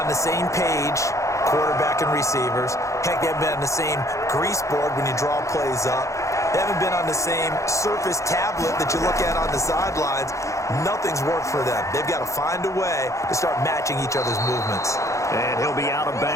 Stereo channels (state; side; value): late; right; 0.15 ms